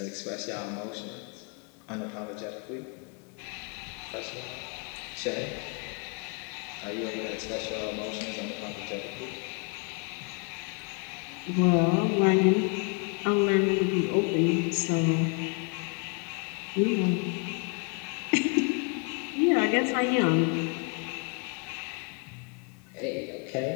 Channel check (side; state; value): right; quieter; 35.2 dB